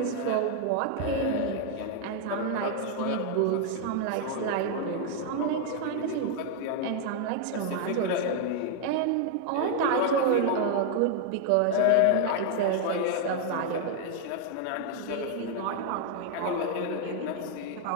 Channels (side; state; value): both; different; correlation 0.00